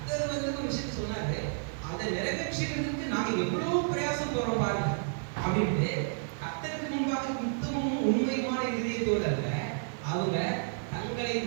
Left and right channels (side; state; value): left; silent; 57 dB below the other